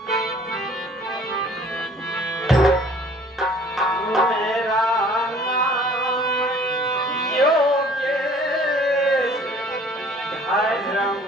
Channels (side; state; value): both; normal; correlation 0.54